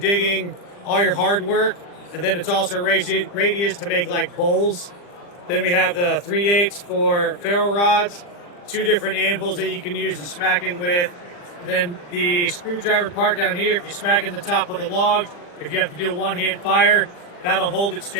all your hard work. And then it's also radius to make like bowls. Then we have the 3/8 for ferro rods, 2 different anvils that you can use to smack in with. Then the screwdriver part down here, if you smack in the top of the log, if you have to do a one-hand fire, that'll hold it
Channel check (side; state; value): right; late; 40 ms